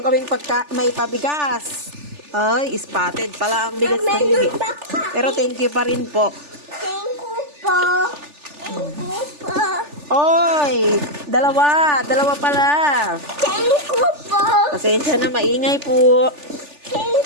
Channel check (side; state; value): left; late; 3.4 ms